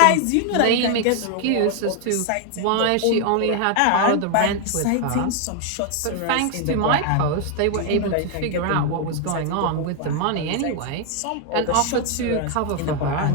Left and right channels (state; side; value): different; both; correlation 0.01